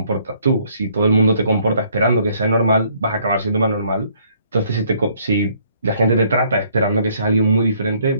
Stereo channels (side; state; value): both; inverted; correlation -0.64